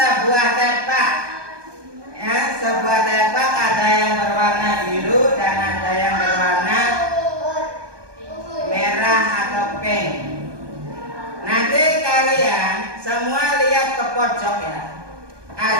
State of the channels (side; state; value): left; late; 1.2 ms